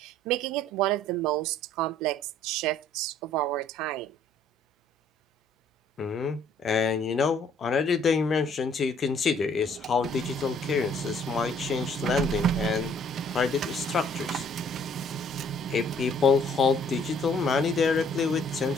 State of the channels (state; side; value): normal; both; correlation 0.60